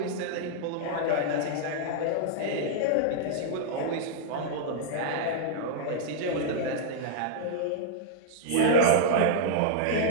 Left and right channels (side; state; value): both; different; correlation -0.01